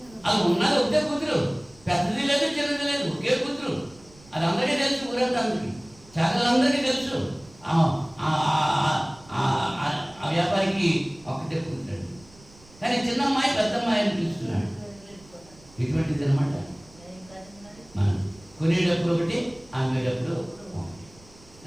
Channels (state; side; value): noise; right; rumble, 25 dB below the sound